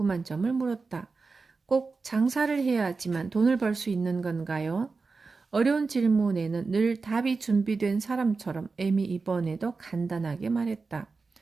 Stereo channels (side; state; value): left; quieter; 4.3 dB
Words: 점을 물었다. 꼭 장사를 해야지만 돈을 벌 수 있는 건가요? 어려운 질문에는 늘 답이 준비된 사람처럼 M이 이번에도 간단하게 말했다.